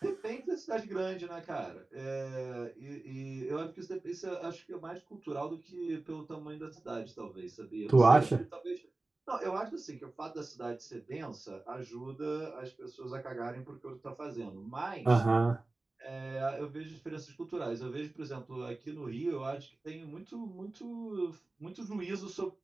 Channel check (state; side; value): quieter; left; 3.1 dB